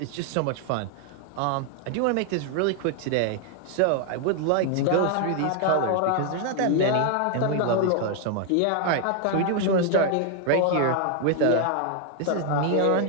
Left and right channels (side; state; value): both; different; correlation 0.00